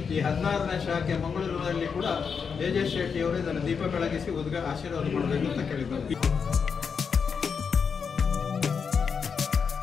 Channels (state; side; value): quieter; right; 6.1 dB